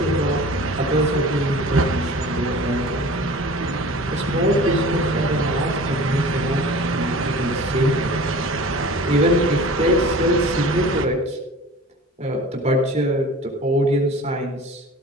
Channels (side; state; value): both; normal; correlation 0.41